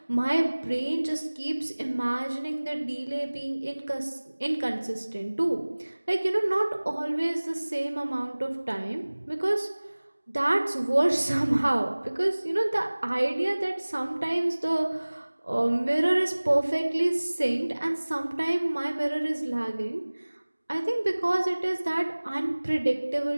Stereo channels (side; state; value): both; inverted; correlation -1.00